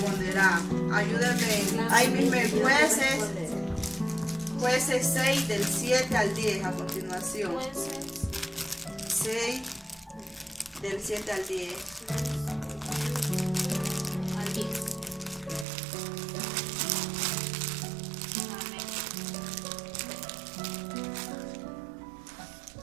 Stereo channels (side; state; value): left; drops out; at 15.7 s